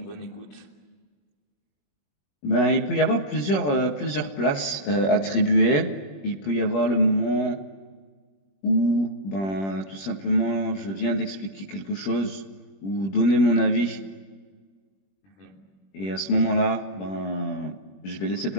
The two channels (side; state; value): right; late; 21 ms